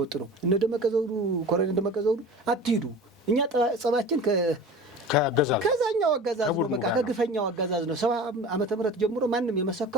ነው። እነ ደመቀ ዘውዱ ኮሎኔል ደመቀ ዘውዱ አትሂዱ፣ እኛ ጸባችን ከዛኛው አገዛዝ ነው፣ በቃ ከግፈኛው አገዛዝ ነው። 70 ዓመተ ምህረት ጀምሮ ማንም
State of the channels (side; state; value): both; normal; correlation 0.36